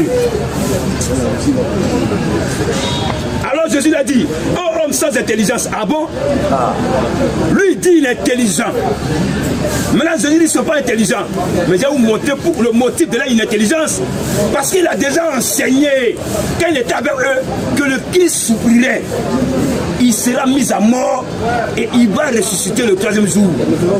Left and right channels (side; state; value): both; identical; correlation 1.00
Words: Alors Jésus a dit, oh homme sans intelligence, ah bon? Lui il dit il est intelligent. Maintenant Jésus dit ils ne sont pas intelligents. Mais je vais vous montrer pour le motif de l'inintelligence. Parce qu'il a déjà enseigné, quand il était avec eux, que le Christ souffrirait. Il sera mis à mort et il va ressusciter le 3e jour.